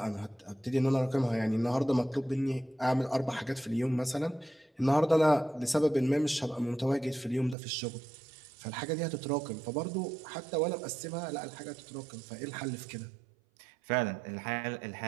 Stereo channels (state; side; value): drops out; left; at 7.6 s